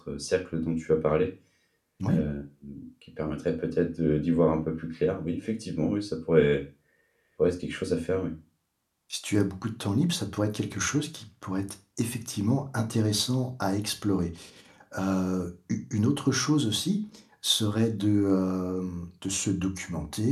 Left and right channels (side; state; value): both; identical; correlation 1.00